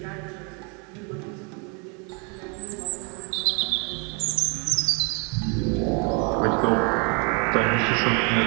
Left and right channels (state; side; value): quieter; left; 34.5 dB